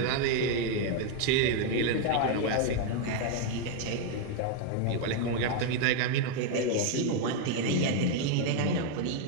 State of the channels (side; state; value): both; different; correlation 0.01